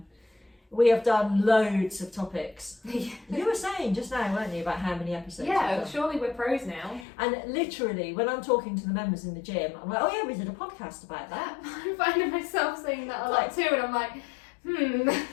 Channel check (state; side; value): drops out; right; at 7.1 s